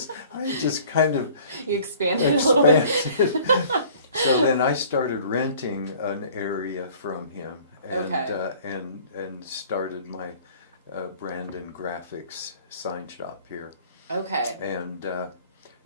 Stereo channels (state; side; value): inverted; both; correlation -0.51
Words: I just kind of expanded a little bit. So then I started renting an area from him, and started my Brandon Graphics sign shop here. Okay. And